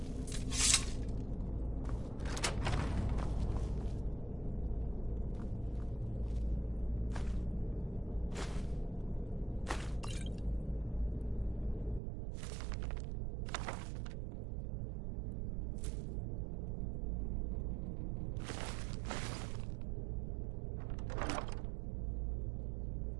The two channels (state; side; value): drops out; left; at 12.0 s